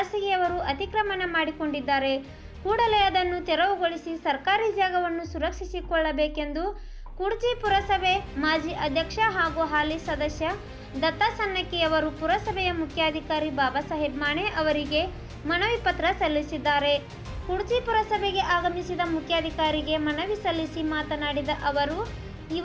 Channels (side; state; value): both; identical; correlation 1.00